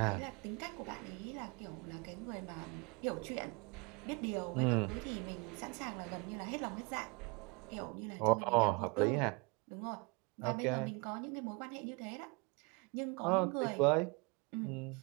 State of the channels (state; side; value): quieter; left; 30.2 dB